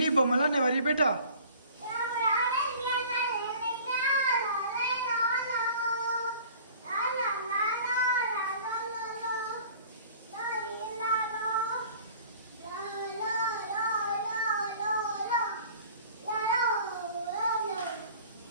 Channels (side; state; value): both; inverted; correlation -0.47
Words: బొమ్మలను ఎవరి బేటా?